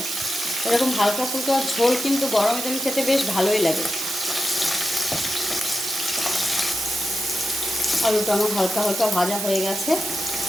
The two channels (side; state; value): right; noise; hiss, 4 dB below the sound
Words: এরকম হালকা ফুলকা ঝোল কিন্তু গরমে দিন খেতে বেশ ভালোই লাগে। আলুটা আমার হালকা হালকা ভাজা হয়ে গেছে।